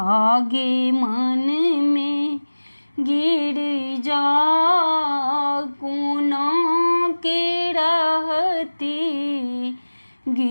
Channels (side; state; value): both; inverted; correlation -1.00